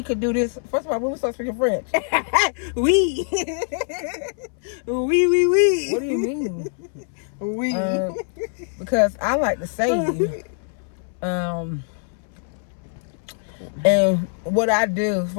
could do this. First of all, when we start speaking French. Oui. Oui. What do you mean? Oui. Because I like to save. And what I do,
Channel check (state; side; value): silent; right; 62 dB below the other